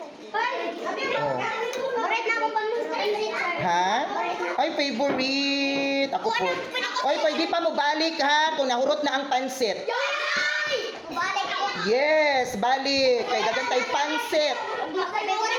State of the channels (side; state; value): both; identical; correlation 1.00